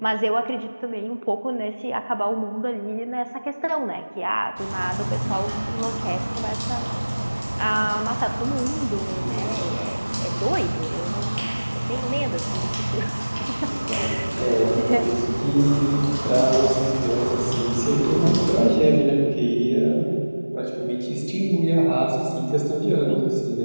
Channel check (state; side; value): inverted; both; correlation -1.00